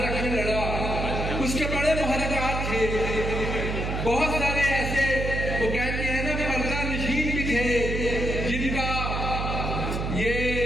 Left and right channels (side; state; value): right; noise; hum, 2 dB below the sound